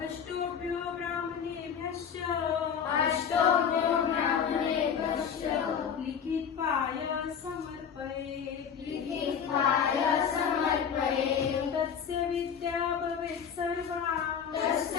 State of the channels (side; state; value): right; quieter; 7.5 dB